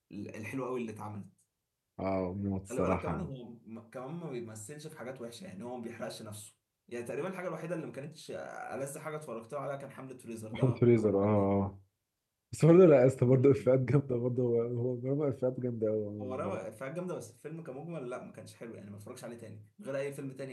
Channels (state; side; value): identical; both; correlation 1.00